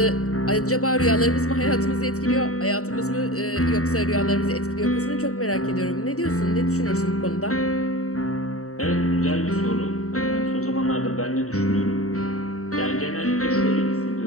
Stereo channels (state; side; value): late; right; 0.65 ms